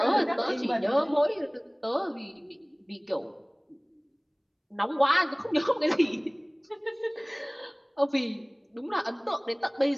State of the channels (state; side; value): identical; both; correlation 1.00